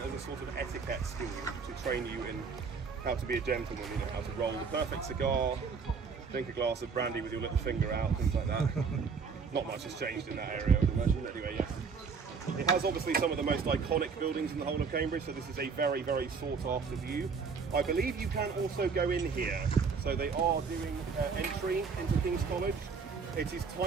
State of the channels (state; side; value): quieter; left; 5.4 dB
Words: as a sort of etiquette school to train you in how to be a gentleman, you know, how to roll the perfect cigar, drink a glass of brandy with your little finger out, things like that. Not much has changed in that area, I would imagine. Anyway, yes. It has obviously some of the most iconic buildings in the whole of Cambridge, so this is a very, very sought after view. I believe you can also go in here, so they are doing entry into King's College. It is